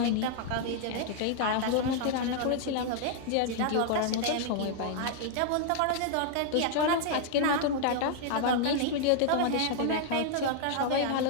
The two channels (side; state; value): both; different; correlation 0.00